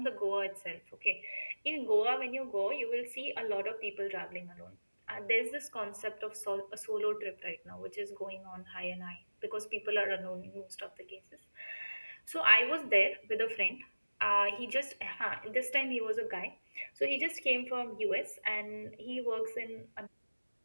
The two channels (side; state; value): both; inverted; correlation -1.00